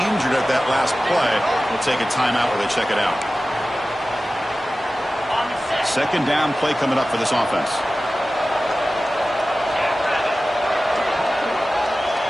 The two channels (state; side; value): normal; both; correlation 0.96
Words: injured at that last play. We'll take a timeout where they check it out. Second down play coming up for this offense.